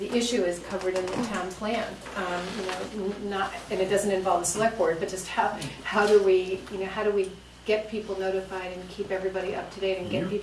issue is covered in the town plan, and it doesn't involve the select board, but just how do we get people notified and keep everybody up to date and get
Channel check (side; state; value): both; identical; correlation 1.00